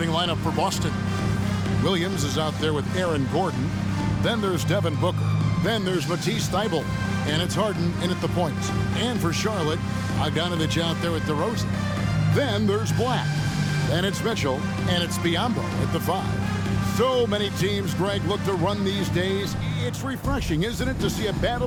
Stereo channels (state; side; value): identical; both; correlation 1.00